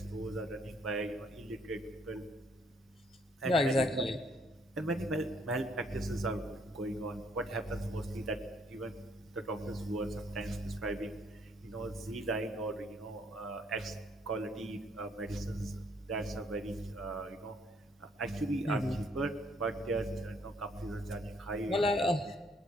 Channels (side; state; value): both; normal; correlation 0.67